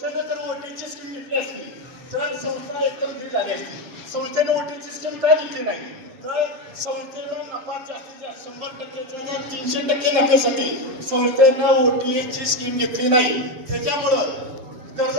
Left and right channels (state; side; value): late; left; 7.7 ms